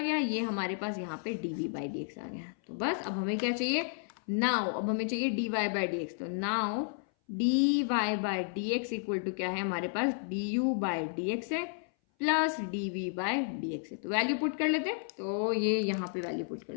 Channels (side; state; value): right; silent; 56 dB below the other